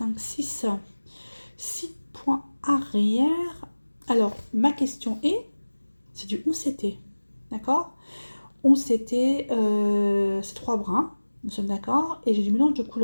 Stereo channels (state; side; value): inverted; both; correlation -1.00